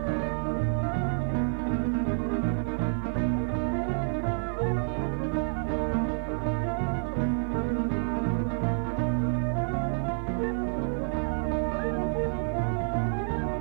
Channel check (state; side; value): silent; left; 56 dB below the other